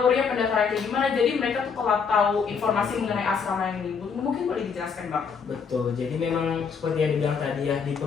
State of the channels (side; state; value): right; quieter; 6.0 dB